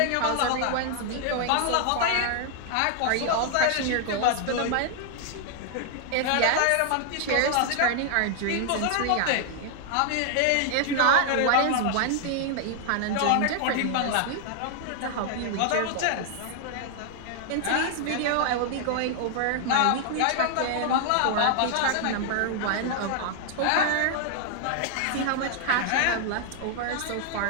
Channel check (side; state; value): both; different; correlation 0.00